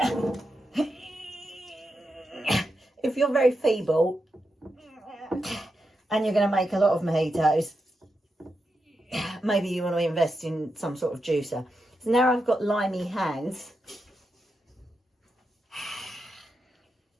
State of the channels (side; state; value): both; normal; correlation 0.87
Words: If you're very feeble and you're going to make a lot of mojitos, maybe you want to invest in some sort of juicer. So now I've got limey hands.